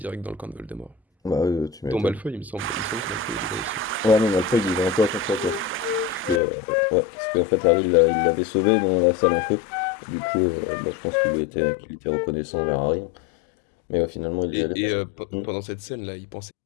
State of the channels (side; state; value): right; drops out; at 6.4 s